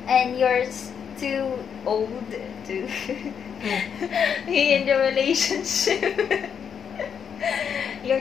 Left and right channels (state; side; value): quieter; right; 7.5 dB